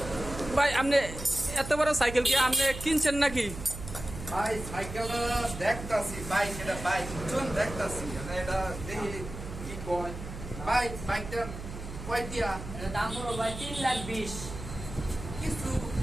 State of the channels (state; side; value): noise; right; hum, 10 dB below the sound